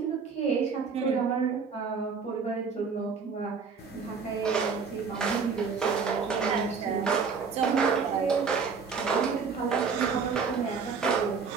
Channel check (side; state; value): left; quieter; 5.5 dB